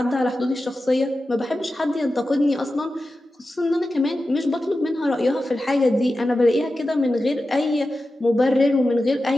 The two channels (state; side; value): normal; both; correlation 0.93